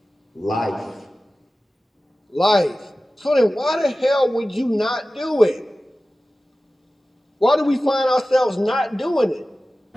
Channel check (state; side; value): normal; both; correlation 0.96